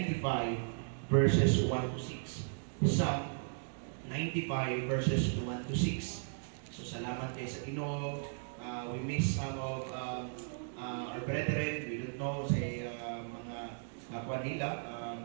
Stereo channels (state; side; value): silent; left; digital silence